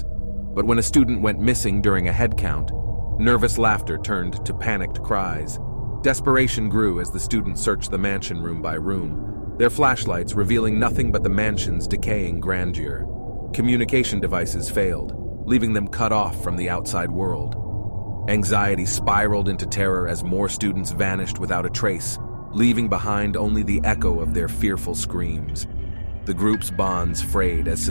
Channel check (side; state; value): both; inverted; correlation -1.00